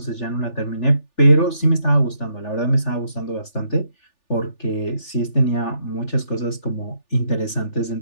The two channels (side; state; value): right; late; 3.4 ms